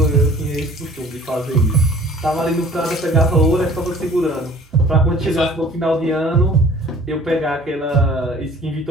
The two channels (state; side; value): normal; both; correlation 0.49